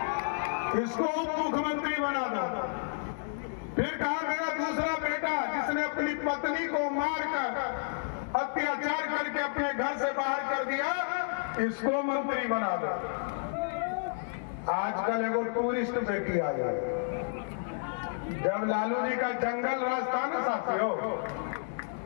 इसको उप मुख्यमंत्री बना दो, फिर कहा मेरा दूसरा बेटा जिसने अपनी पत्नी को मारकर अत्याचार करके अपने घर इसको मंत्री बना दो। आजकल एगो टूरिस्ट बेटी आई है। जब लालू जी का जंगल राज था ना साथियों,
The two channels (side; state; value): right; silent; digital silence